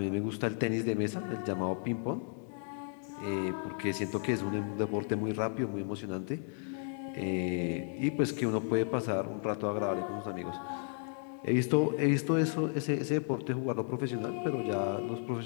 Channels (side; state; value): right; silent; 55 dB below the other